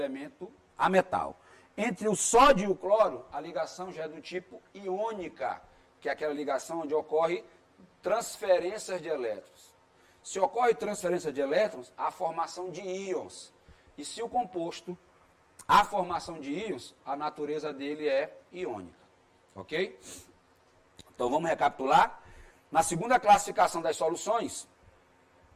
ametal. Entre o sódio e o cloro, a ligação já é do tipo iônica, que é aquela ligação onde ocorre transferências de elétrons. Se ocorre transferência de elétrons, há formação de íons. E se o composto há formação de íons, a natureza dele é iônica. Ok? Então vamos recapitular. Na segunda classificação das soluções,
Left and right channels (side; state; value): both; identical; correlation 1.00